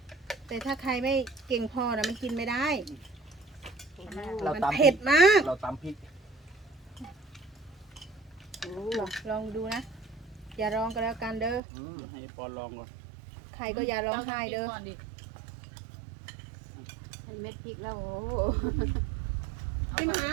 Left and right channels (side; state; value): left; drops out; at 11.6 s